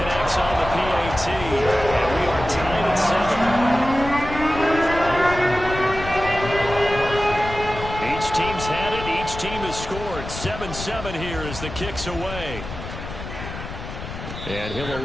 on the PAT, and we are tied at 7. Each team's had it. Each team has scored. 7-7 here as the kick's away. And he'll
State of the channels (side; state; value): left; noise; rumble, 9 dB below the sound